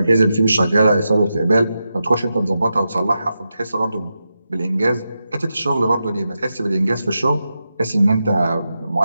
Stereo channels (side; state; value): both; inverted; correlation -0.89